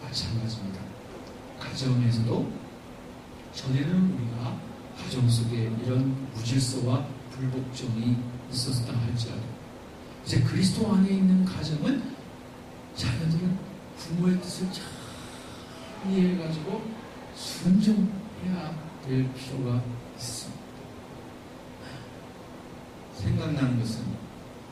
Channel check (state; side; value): identical; both; correlation 1.00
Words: 마찬가지입니다. 가정에서도 전에는 우리가 가정 속에 이런 무질서와 불복종이 있었다 할지라도 이제 그리스도 안에 있는 가정은 자녀들은 부모의 뜻을 잘 이해해가지고 순종해야 될 필요가 있습니다. 생각나는 것은